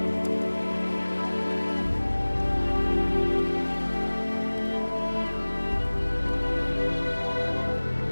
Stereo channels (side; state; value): both; inverted; correlation -1.00